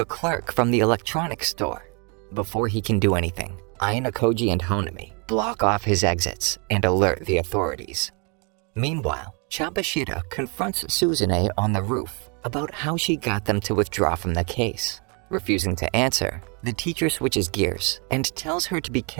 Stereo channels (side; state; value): left; quieter; 34.6 dB